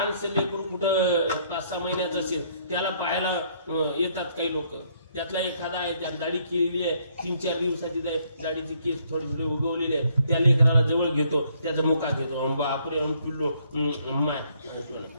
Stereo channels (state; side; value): inverted; both; correlation -0.68